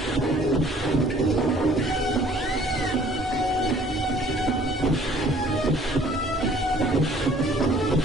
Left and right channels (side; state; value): both; normal; correlation 0.56